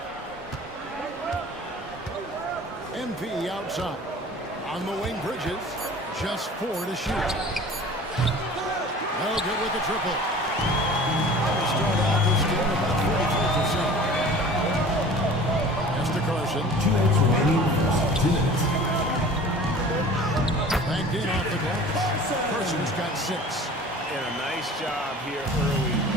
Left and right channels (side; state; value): both; normal; correlation 0.43